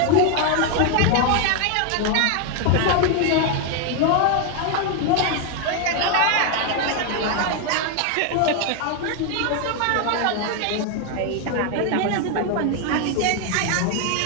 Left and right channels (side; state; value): both; different; correlation 0.01